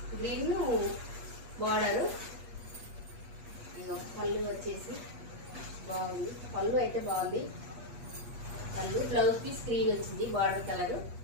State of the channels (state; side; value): late; left; 8.4 ms